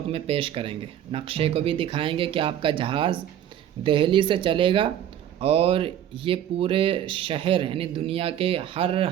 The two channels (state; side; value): quieter; left; 10.7 dB